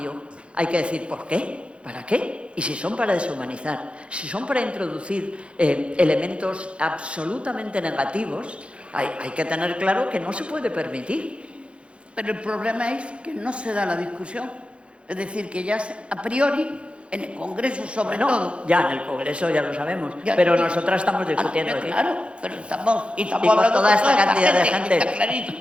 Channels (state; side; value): late; left; 0.059 ms